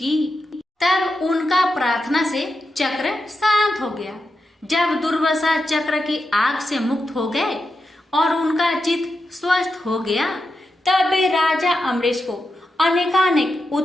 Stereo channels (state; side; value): normal; both; correlation 0.88